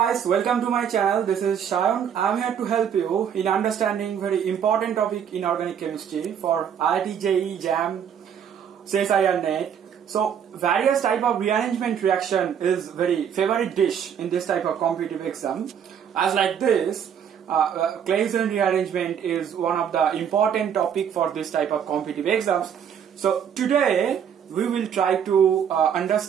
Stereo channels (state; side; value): quieter; left; 8.3 dB